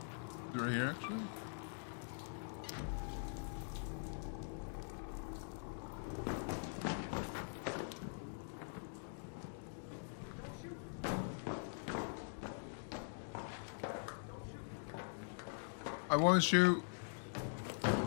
Right here, actually? I want to shoot.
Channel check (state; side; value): silent; right; digital silence